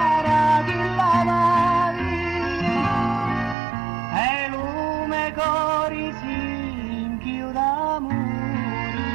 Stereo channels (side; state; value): left; drops out; at 3.6 s